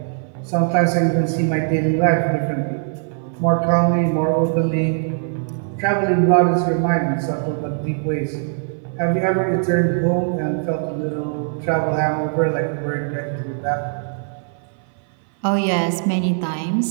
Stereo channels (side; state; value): left; silent; 59 dB below the other